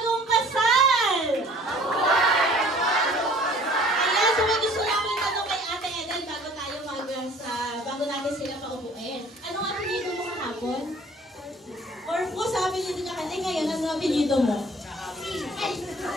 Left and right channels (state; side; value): normal; both; correlation 0.52